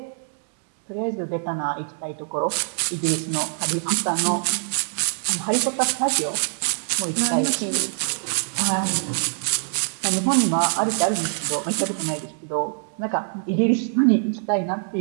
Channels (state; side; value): silent; left; digital silence